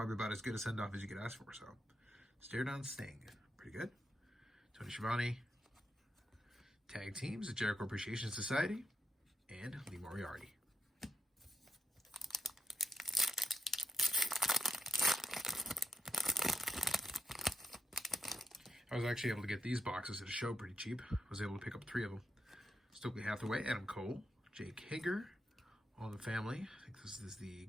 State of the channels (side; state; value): both; normal; correlation 0.84